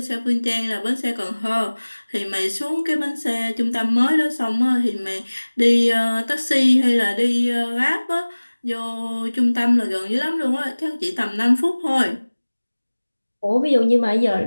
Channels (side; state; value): both; inverted; correlation -1.00